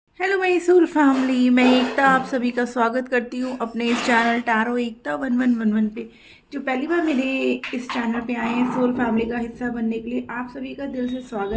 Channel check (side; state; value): both; identical; correlation 1.00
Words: हेलो मैसूर फैमिली, मैं एकता आप सभी का स्वागत करती हूँ अपने इस चैनल टैरो एकता 1111 पे। जो पहली बार मेरे इस चैनल पे आए हैं सोल फैमिली का हिस्सा बनने के लिए, आप सभी का दिल से